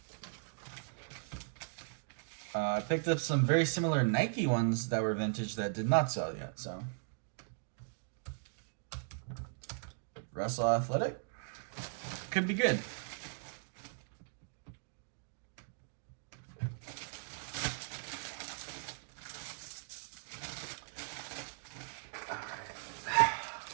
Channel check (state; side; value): silent; left; digital silence